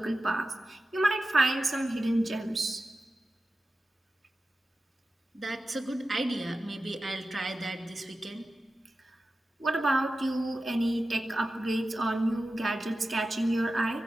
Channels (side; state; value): both; normal; correlation 0.94